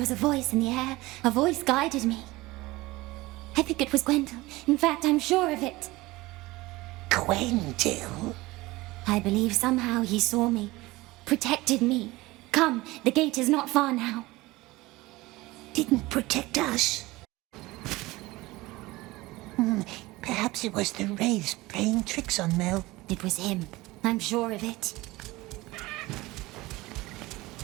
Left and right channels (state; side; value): quieter; left; 20.2 dB